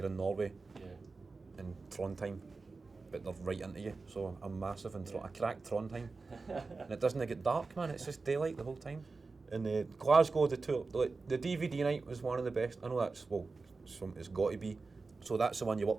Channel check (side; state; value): left; quieter; 4.0 dB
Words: in Norway, in Trondheim. But they're right into you, so I'm massive in I cracked Trondheim, and it doesn't get dark, man. It's just daylight the whole time. And Glasgow, the tour, the DVD night was one of the best. I know it's got to be. So that's the one you